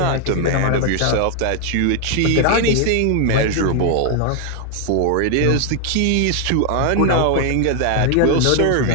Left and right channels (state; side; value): different; both; correlation 0.00